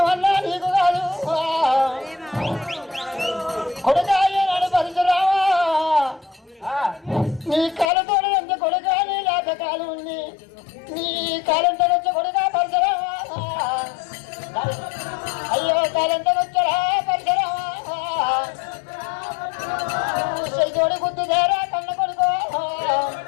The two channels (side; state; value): right; drops out; at 7.9 s